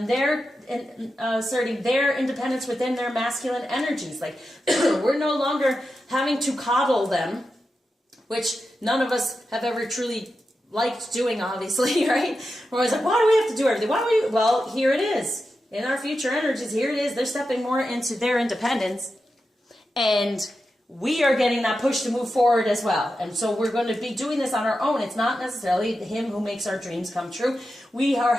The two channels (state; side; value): normal; both; correlation 0.90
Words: they're asserting their independence within their masculine energies. Like, we're no longer having to coddle them, which none of us have ever truly liked doing, obviously, right? We're always like, why do we have to do everything? Well, here it is. In our future energies, here it is. They're stepping more into their independence. And we are getting that push to move forward as well. And so we're going to be doing this on our own. It's not necessarily him who makes our dreams come true. We